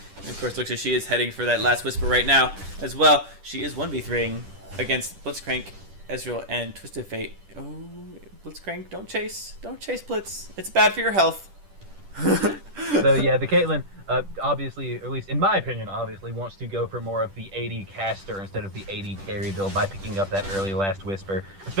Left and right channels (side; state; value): left; late; 10 ms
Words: And of course, looks like she is heading for that last Whisper right now as well. She is 1v3ing against Blitzcrank, Ezreal, and Twisted Fate. Oh, Blitzcrank, don't chase. Don't chase Blitz. It's bad for your health. So yeah, the Caitlyn, obviously, or at least in my opinion, obviously wants to go for more of the AD caster instead of the AD carry build by picking up that early last Whisper,